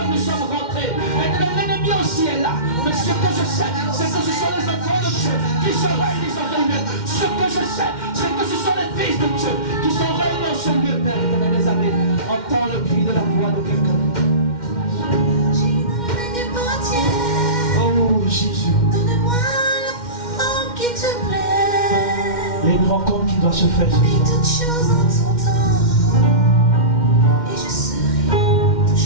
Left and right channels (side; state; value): right; late; 2.1 ms